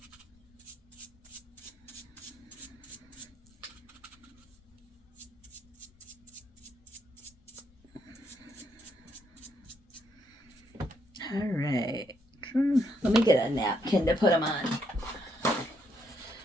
All right. Let me get a napkin to put them on.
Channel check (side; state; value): both; normal; correlation 0.75